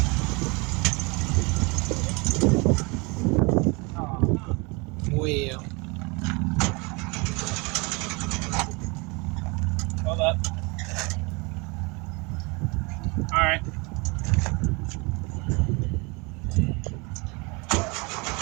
Well, Hold up. All right.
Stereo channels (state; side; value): quieter; left; 28.5 dB